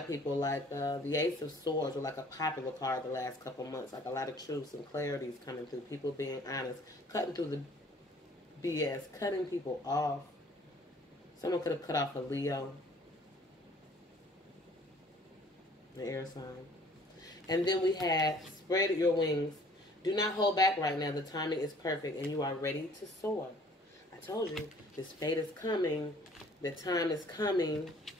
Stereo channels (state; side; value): normal; both; correlation 0.55